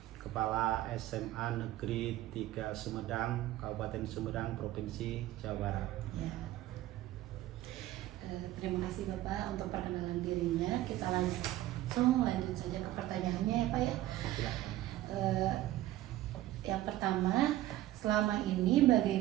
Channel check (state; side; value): quieter; left; 15.1 dB